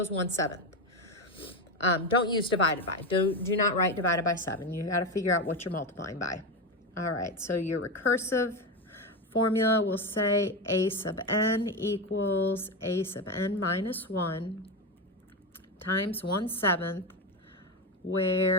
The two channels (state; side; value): normal; both; correlation 0.15